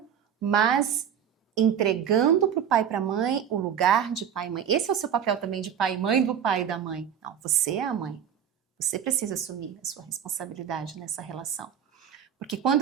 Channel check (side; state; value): left; quieter; 8.7 dB